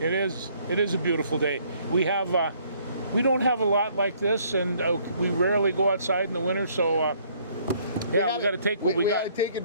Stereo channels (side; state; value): both; inverted; correlation -0.63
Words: It is a beautiful day. We don't have a lot like this, and we rarely go outside in the winter. So we got to take what we got. We got to take